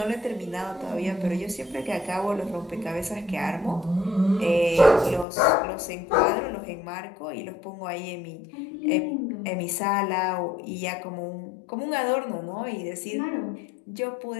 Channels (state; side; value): drops out; right; at 5.2 s